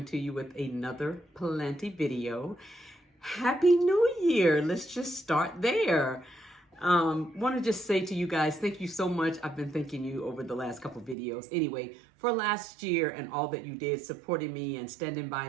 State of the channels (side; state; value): left; drops out; at 11.2 s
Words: to you with another planty video. Happy New Year. Let's just start there. Want to just say to you guys, thank you so much. I've been thanking you over the last couple videos. Anyway, for last year and all that you did, supporting me and standing